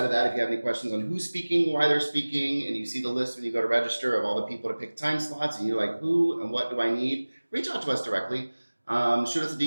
of that, if you have any questions on who's speaking, why they're speaking, and you see the list when you go to register of all the people to pick time slots, and you're like, who and what do I need? Reach out to us directly. Shoot us a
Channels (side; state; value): both; inverted; correlation -1.00